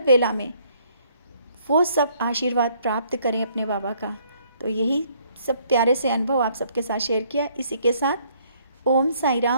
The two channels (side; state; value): both; inverted; correlation -0.65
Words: वेला में वो सब आशीर्वाद प्राप्त करें अपने बाबा का। तो यही सब प्यारे से अनुभव आप सबके साथ शेयर किया। इसी के साथ ओम साई